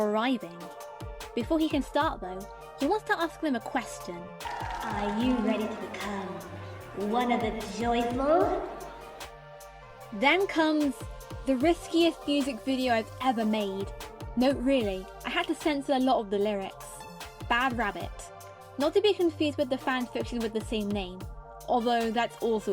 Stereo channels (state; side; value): identical; both; correlation 1.00